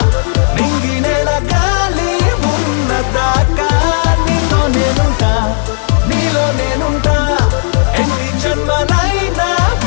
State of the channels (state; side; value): silent; right; 59 dB below the other